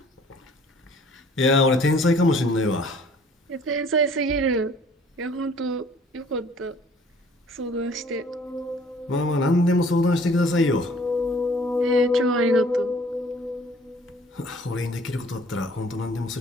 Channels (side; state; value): both; normal; correlation 0.55